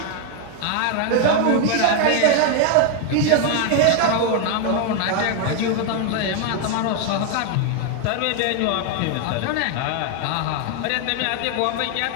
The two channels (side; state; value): both; different; correlation 0.01